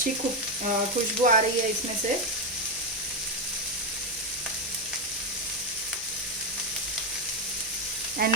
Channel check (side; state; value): both; normal; correlation 0.06